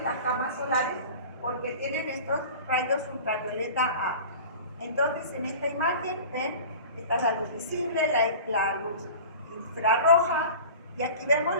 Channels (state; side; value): inverted; both; correlation -0.39